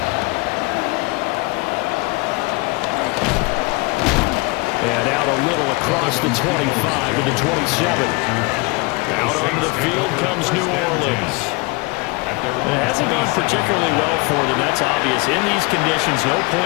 And out a little across the 25 to the 27. Out onto the field comes New Orleans. It hasn't gone particularly well for them, that's obvious. In these conditions, no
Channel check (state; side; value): quieter; right; 26.5 dB